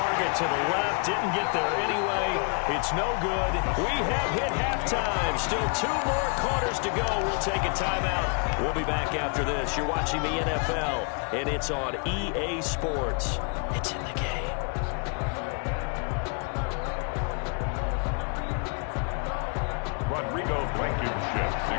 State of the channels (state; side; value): quieter; right; 37.7 dB